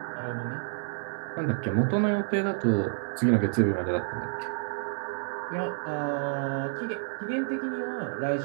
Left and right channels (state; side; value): silent; left; digital silence